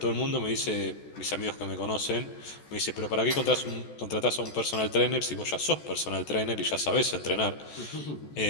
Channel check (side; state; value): right; late; 14 ms